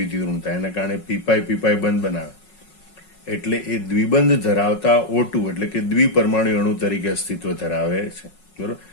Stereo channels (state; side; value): late; right; 5.4 ms